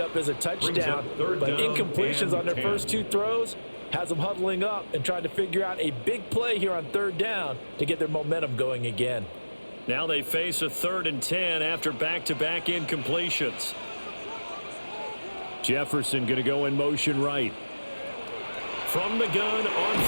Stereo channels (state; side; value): inverted; both; correlation -1.00